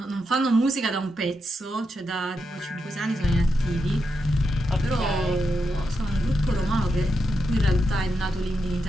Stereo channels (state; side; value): normal; both; correlation 0.85